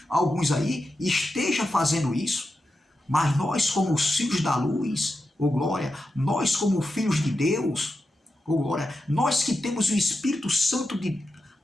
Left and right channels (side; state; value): both; normal; correlation 0.89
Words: alguns aí, estejam fazendo isso, mas nós, como os filhos da luz, ô glória, nós, como filhos de Deus, ô glória, nós que temos o Espírito Santo